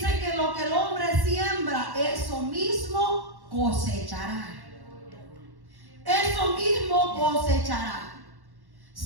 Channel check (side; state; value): left; late; 1.1 ms